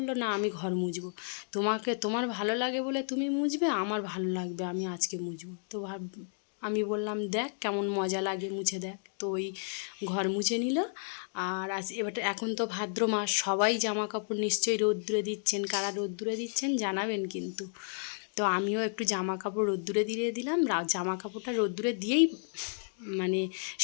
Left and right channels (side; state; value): right; silent; 56 dB below the other